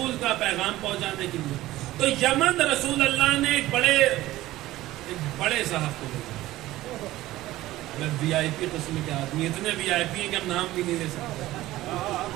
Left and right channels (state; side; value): quieter; left; 16.4 dB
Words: کا پیغام پہنچانے کے لیے. تو یمن رسول اللہ نے ایک بڑے صاحب کو بھیجا، وی آئی پی قسم کے آدمی، اتنے وی آئی پی ہیں کہ ہم نام بھی نہیں لے سکتے،